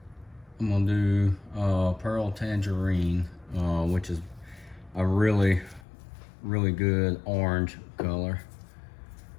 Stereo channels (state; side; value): drops out; right; at 5.8 s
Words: I'm gonna do Pearl Tangerine, which is a really good orange color.